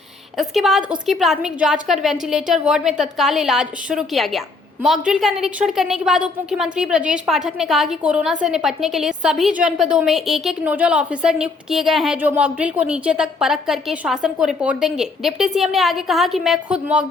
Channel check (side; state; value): right; quieter; 3.9 dB